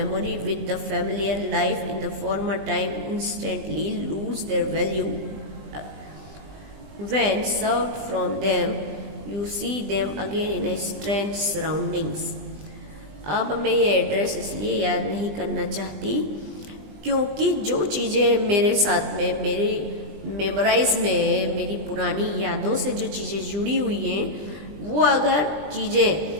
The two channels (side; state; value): left; late; 20 ms